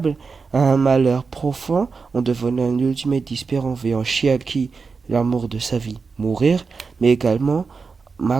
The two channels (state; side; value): quieter; left; 4.8 dB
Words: à un malheur profond en devenant un ultimate espérant voyant Chiaki, l'amour de sa vie, mourir, mais également